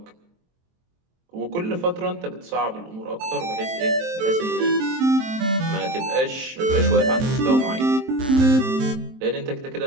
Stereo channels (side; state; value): left; late; 23 ms